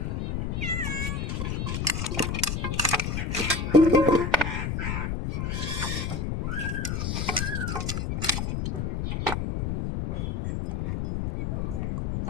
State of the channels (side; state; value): left; noise; rumble, 1 dB below the sound